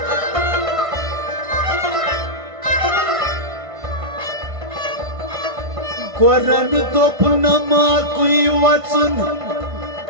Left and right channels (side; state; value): left; late; 1.5 ms